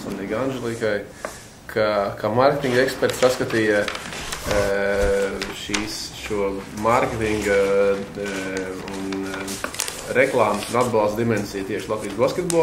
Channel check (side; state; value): both; identical; correlation 1.00